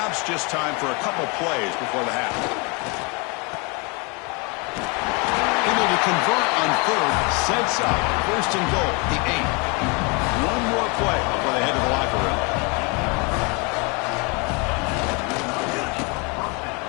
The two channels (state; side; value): quieter; right; 30.2 dB